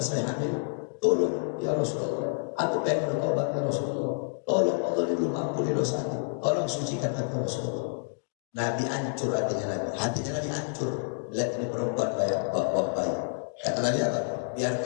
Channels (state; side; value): silent; right; digital silence